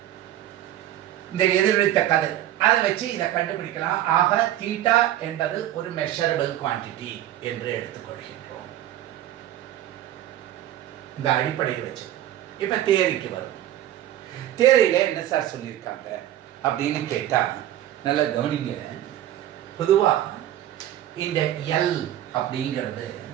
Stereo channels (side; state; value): left; quieter; 12.7 dB